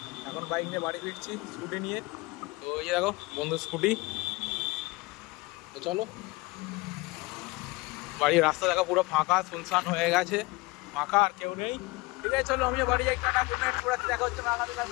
এখন বাইক নিয়ে বাড়ি ফিরছি স্কুটি নিয়ে। তো এই যে দেখো বন্ধু স্কুটি। তো চলো, বাড়ির রাস্তা দেখো পুরো ফাঁকা, শুনশান হয়ে গেছে, ফাঁকা, আর কেউ নেই। ঠিক আছে চলো আমিও বাড়ি যাই, টাটা, গুড নাইট, পুরো দেখা হচ্ছে আগামীকাল,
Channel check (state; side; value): quieter; right; 23.5 dB